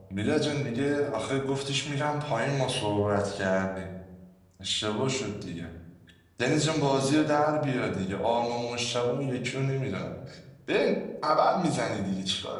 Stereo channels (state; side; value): identical; both; correlation 1.00